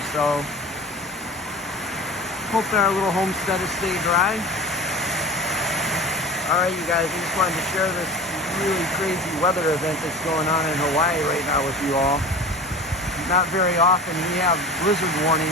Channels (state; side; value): normal; both; correlation 0.35